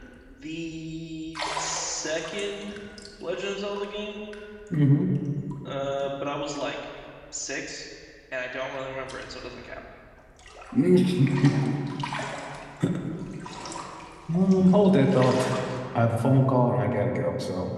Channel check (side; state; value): both; identical; correlation 1.00